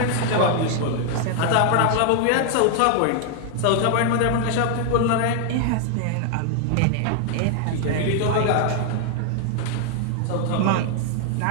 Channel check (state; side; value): different; both; correlation 0.00